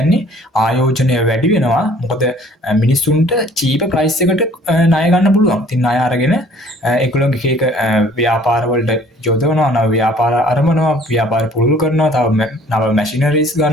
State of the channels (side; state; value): both; normal; correlation 0.55